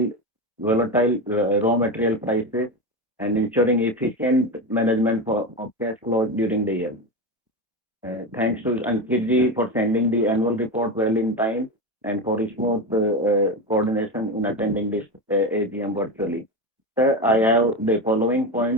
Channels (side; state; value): both; normal; correlation 0.18